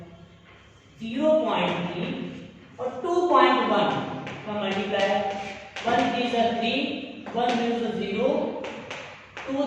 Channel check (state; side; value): identical; both; correlation 1.00